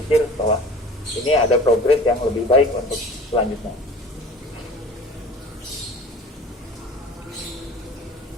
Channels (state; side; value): normal; both; correlation 0.42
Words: bahwa ini ada progres yang lebih baik untuk selanjutnya.